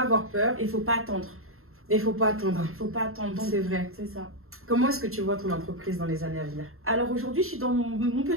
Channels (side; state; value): left; late; 0.62 ms